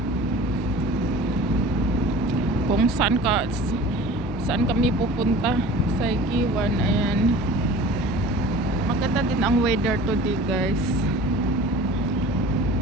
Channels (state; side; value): normal; both; correlation 0.41